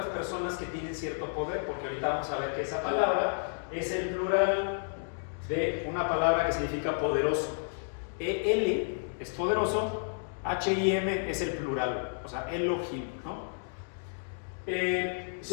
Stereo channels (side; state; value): right; silent; digital silence